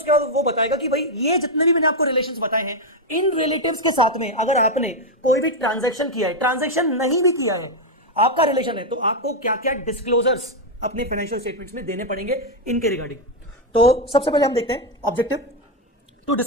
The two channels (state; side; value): normal; both; correlation 0.03